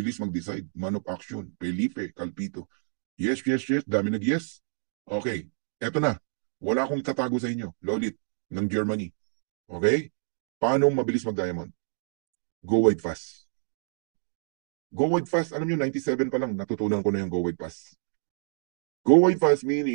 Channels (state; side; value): silent; left; digital silence